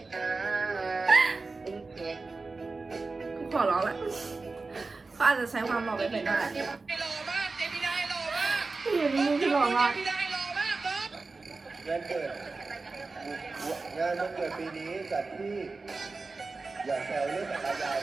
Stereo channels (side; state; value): left; quieter; 3.9 dB